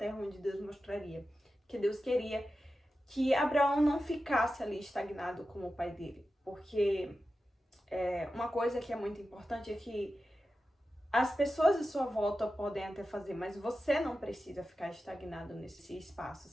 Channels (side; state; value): both; normal; correlation 0.92